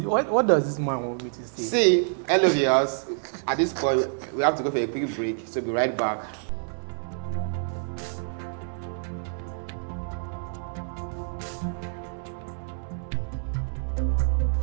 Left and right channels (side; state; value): left; silent; 60 dB below the other